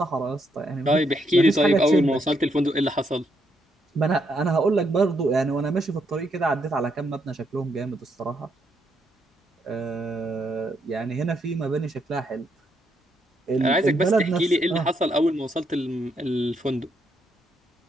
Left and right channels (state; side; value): normal; both; correlation 0.76